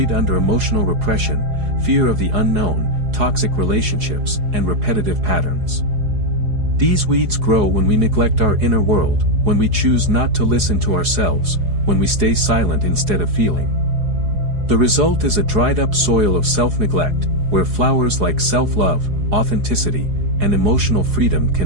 under emotional repression, fear of the unknown, toxic relationships, and repetitive patterns. These weeds grow when we neglect our inner world, when we choose not to listen to ourselves, when we stay silent instead of feeling. The result is a dried-up soil of self-neglect, where flowers like self-love, authenticity, and emotional freedom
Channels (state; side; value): late; left; 4.8 ms